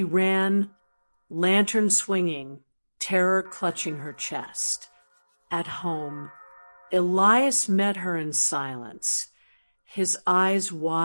ran, lantern swinging, terror clutching her chest. At home, Elias met her in silence, his eyes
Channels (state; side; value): inverted; both; correlation -1.00